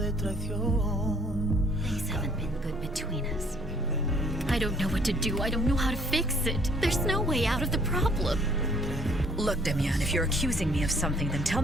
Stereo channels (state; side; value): normal; both; correlation 0.61